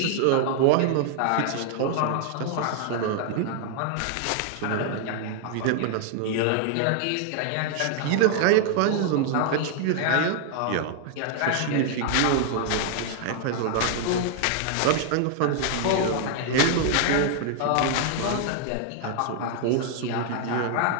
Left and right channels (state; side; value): different; both; correlation 0.00